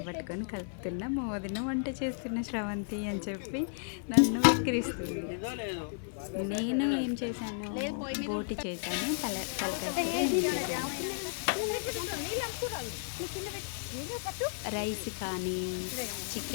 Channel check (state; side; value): silent; right; 56 dB below the other